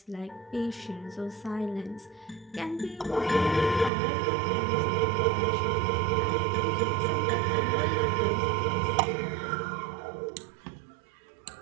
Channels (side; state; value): left; drops out; at 3.9 s